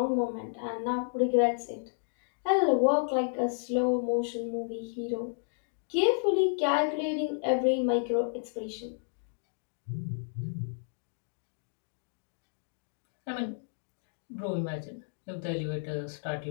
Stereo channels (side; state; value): right; silent; digital silence